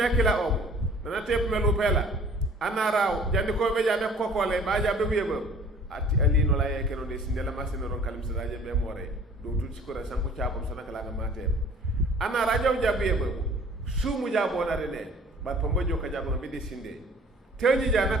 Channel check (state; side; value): normal; both; correlation 0.51